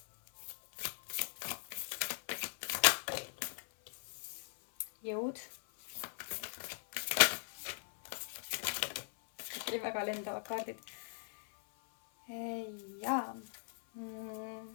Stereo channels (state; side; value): silent; right; 51 dB below the other